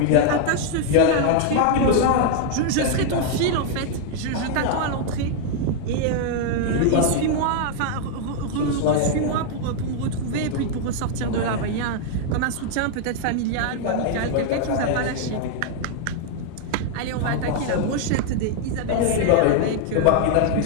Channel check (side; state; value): both; different; correlation 0.00